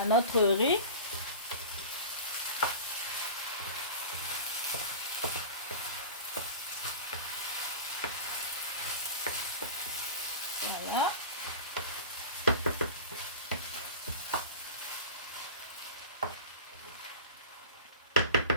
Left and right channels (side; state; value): both; inverted; correlation -0.34